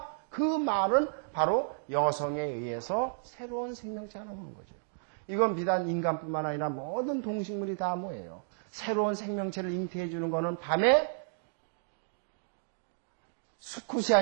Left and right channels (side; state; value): left; silent; digital silence